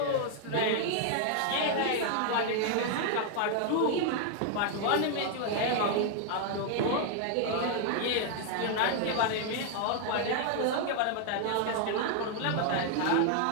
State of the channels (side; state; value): both; different; correlation 0.00